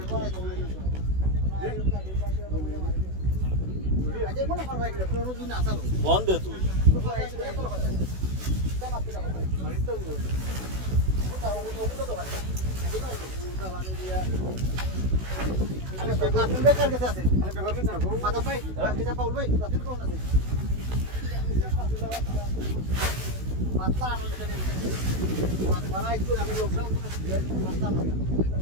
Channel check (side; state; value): left; late; 16 ms